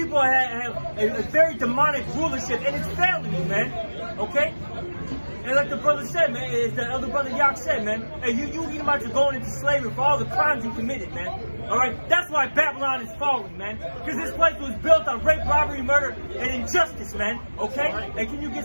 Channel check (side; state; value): both; inverted; correlation -1.00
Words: have a very demonic rulership, and it's failing you, man. Okay? And like the brother said, man, as the other brother Yak said, man, hey, you Edomites are going into slavery for all the crimes you committed, man. All right? That's why Babylon is falling, man. Because this place was built on rape, robbery, murder, and injustice, man. Okay? And can you